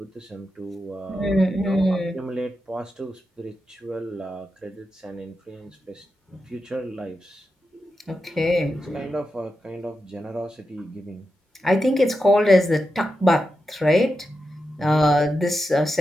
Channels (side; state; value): both; normal; correlation 0.89